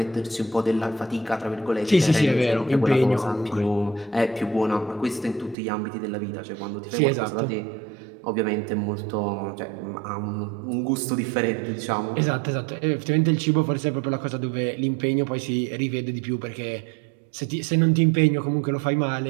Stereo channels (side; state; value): left; drops out; at 5.6 s